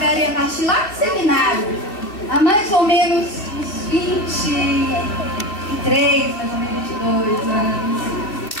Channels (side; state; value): right; late; 2.6 ms